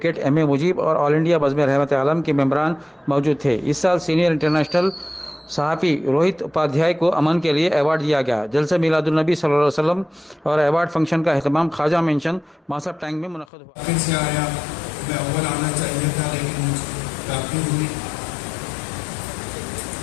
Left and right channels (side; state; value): right; drops out; at 13.5 s